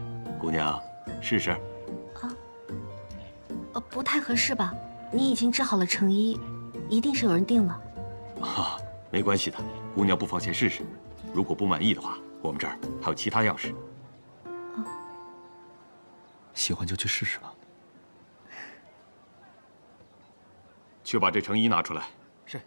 姑娘试试。不太合适吧？你已经织好了成衣，一定是有人订了。啊，没关系的，姑娘不妨先试试。如果不满意的话，我们这儿还有其他样式。喜欢就去试试吧。去把这成衣拿出来。是。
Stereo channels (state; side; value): inverted; both; correlation -1.00